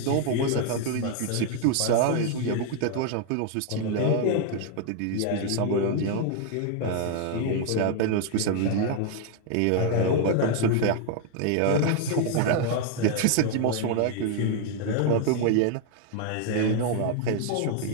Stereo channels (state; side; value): different; both; correlation 0.00